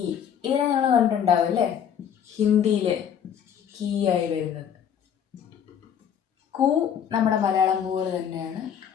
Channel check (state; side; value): quieter; right; 8.5 dB